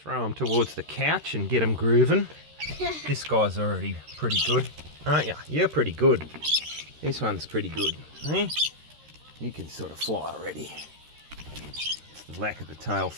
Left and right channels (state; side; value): late; left; 13 ms